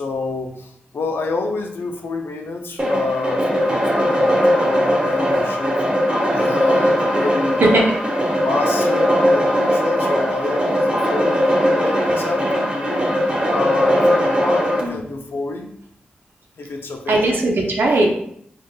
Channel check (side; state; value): both; normal; correlation 0.87